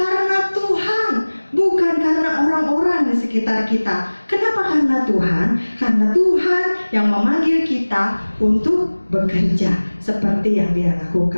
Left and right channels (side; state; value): both; inverted; correlation -1.00